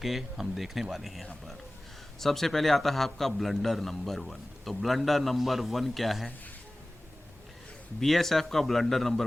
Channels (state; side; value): normal; both; correlation 0.98